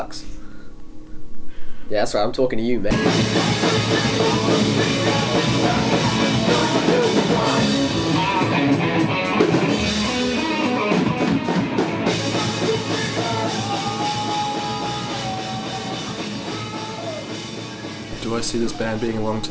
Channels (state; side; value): identical; both; correlation 1.00